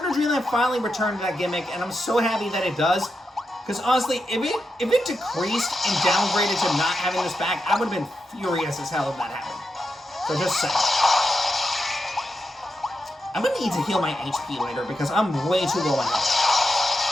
to Dreamland finally returned to that gimmick, and I'm so happy that it does. Because honestly, if it decreased and downgraded to not having this back, I would have been furious as hell if that happened. So just saying. I'm gonna need to heal my HP later because I'm way too low on health.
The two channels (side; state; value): both; normal; correlation 0.87